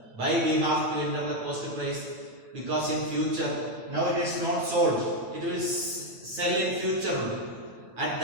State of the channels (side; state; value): left; late; 9.0 ms